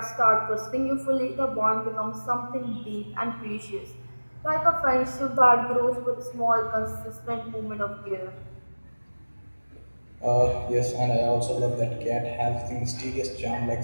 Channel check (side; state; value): both; inverted; correlation -1.00